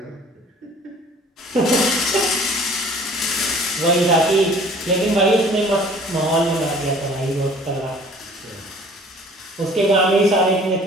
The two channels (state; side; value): normal; both; correlation 0.51